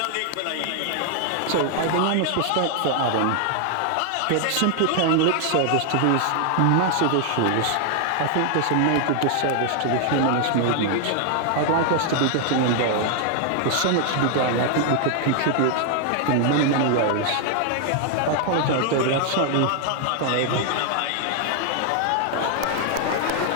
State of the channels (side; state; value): both; different; correlation 0.00